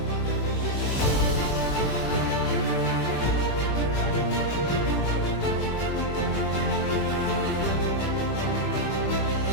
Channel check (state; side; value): late; right; 20 ms